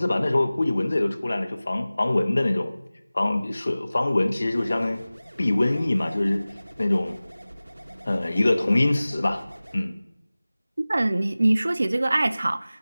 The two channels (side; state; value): both; inverted; correlation -0.98